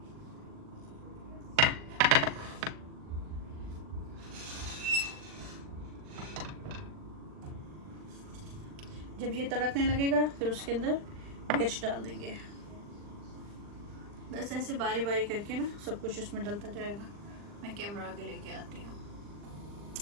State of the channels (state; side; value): late; left; 40 ms